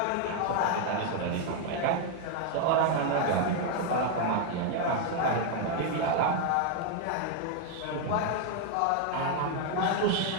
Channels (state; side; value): different; both; correlation 0.00